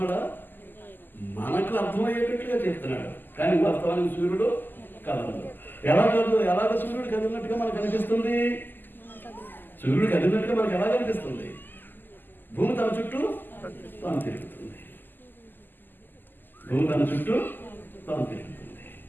మనకు అర్థమయ్యేటట్టుగా చెప్తున్నాడు. కానీ వాస్తవానికి సూర్యుడు కదలడు. ఎలాగ సూర్యుడు కదిలినట్టుగా మనకు అనిపిస్తుంది? సూర్యుడు కదిలినట్టుగా మనకు ఎలా కనిపిస్తుంది? భూమి తన చుట్టూ తాను తిరుగుతుంది. భూమి తన చుట్టూ తాను తిరుగుతుంది.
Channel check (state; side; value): late; right; 0.090 ms